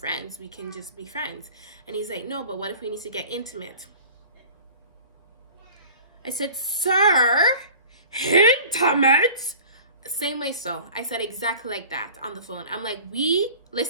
We can just be friends. And he's like, no, but what if we need to get intimate? I said, sir, intimate? Same way. So I said exactly like that on the phone. I'm like, we,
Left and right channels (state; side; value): inverted; both; correlation -0.43